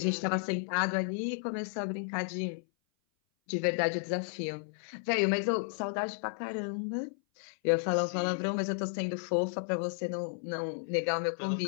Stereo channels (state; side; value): silent; right; 56 dB below the other